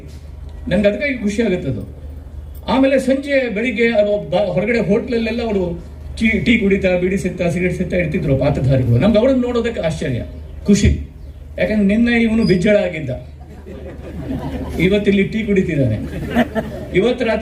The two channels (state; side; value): identical; both; correlation 1.00